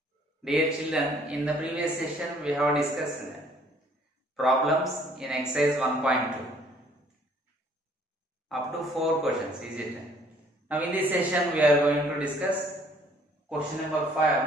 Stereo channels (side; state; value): both; normal; correlation 0.60